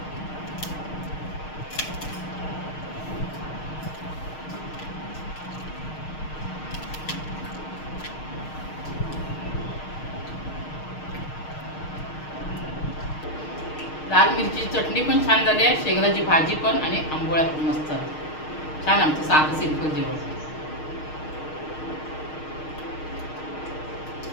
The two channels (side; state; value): right; late; 6.5 ms